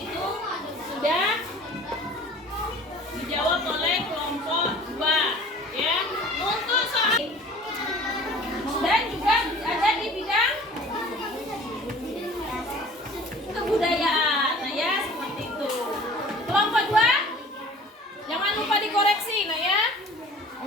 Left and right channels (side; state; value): both; normal; correlation 0.46